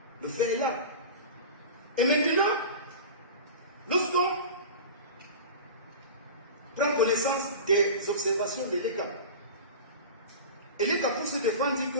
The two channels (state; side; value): inverted; both; correlation -0.32